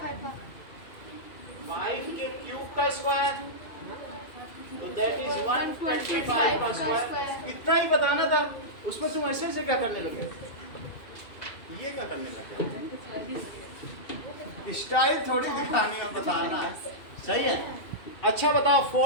का 5 के क्यूब का स्क्वायर, तो दैट इज 125 का स्क्वायर। इतना ही बताना था, उसमें तुम ऐसे से क्या करने लगे? ये क्या करने लगे? स्टाइल थोड़ी दिखाने में बताना है। सही है। अच्छा बताओ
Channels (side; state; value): right; late; 2.4 ms